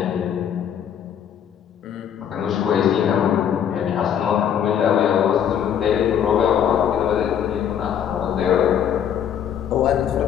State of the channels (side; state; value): right; quieter; 9.0 dB